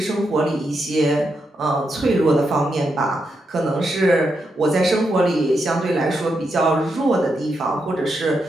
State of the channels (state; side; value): normal; both; correlation 0.83